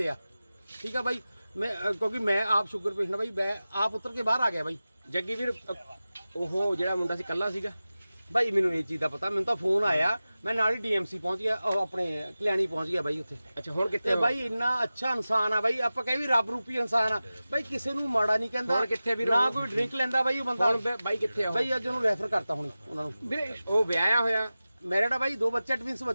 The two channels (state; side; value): inverted; both; correlation -0.96